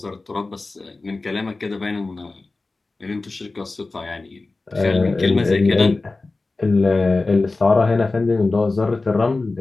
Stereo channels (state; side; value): quieter; right; 3.4 dB